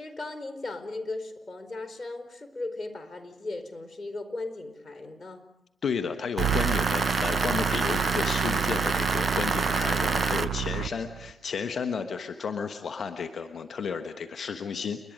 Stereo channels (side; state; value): both; normal; correlation 0.73